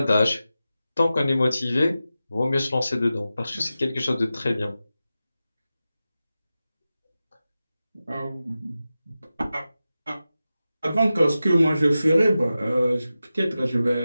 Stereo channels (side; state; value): both; inverted; correlation -0.93